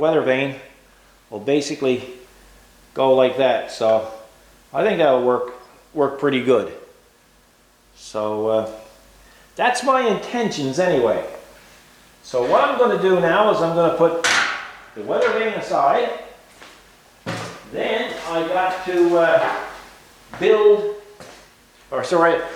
vane will basically go like that. So I think that'll work pretty good. So that's my intentions anyway. So what I'm going to do now is I'm going to put the weather vane aside. Then I got to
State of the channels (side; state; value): both; identical; correlation 1.00